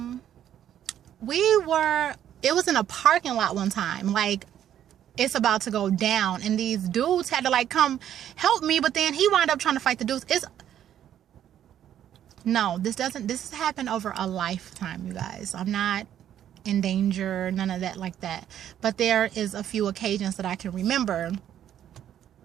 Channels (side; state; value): left; quieter; 10.6 dB